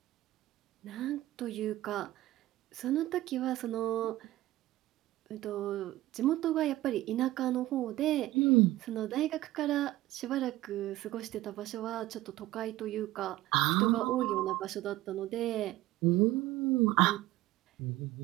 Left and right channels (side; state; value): left; quieter; 16.3 dB